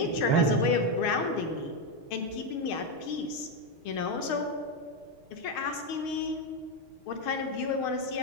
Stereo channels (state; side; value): late; right; 6.4 ms